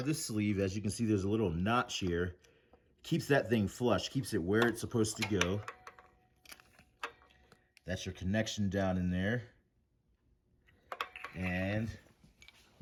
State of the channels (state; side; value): identical; both; correlation 1.00